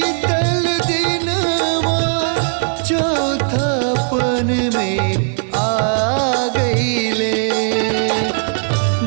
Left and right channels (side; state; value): left; silent; digital silence